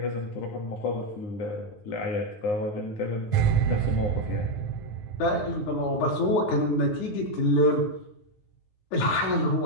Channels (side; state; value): right; late; 9.5 ms